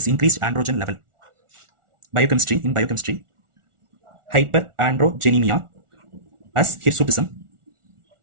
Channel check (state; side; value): late; left; 1.4 ms